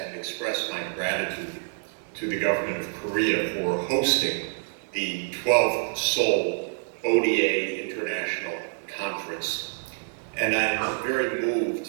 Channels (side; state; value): left; silent; 60 dB below the other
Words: express my gratitude to the government of Korea for hosting the 12th Seoul ODA International Conference. And I'm very